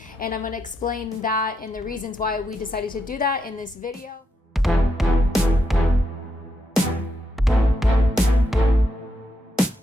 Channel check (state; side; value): normal; both; correlation 0.82